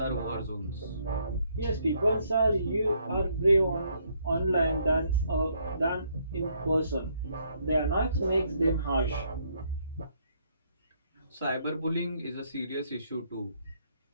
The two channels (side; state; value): both; inverted; correlation -0.70